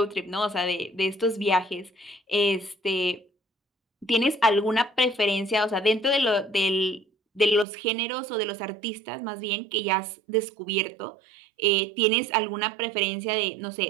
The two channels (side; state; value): left; drops out; at 7.7 s